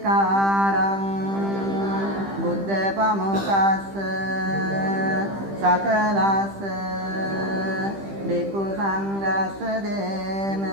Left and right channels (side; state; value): left; late; 15 ms